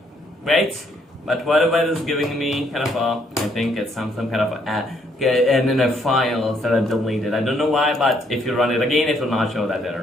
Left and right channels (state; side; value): normal; both; correlation 0.70